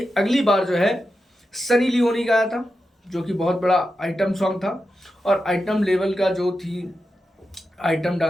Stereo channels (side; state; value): both; normal; correlation 0.90